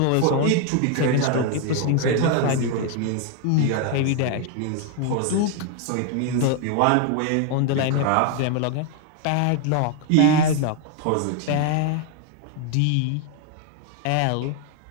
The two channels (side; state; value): both; different; correlation 0.01